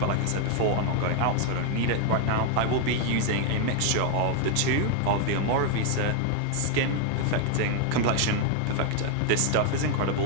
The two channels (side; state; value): both; different; correlation 0.00